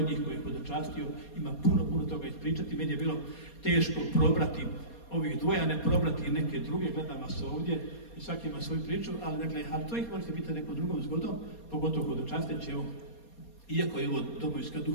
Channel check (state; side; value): late; right; 4.2 ms